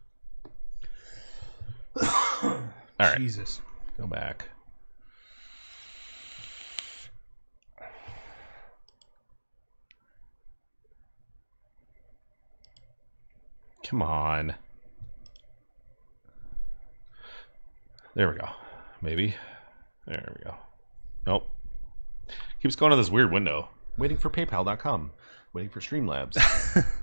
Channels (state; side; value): inverted; both; correlation -1.00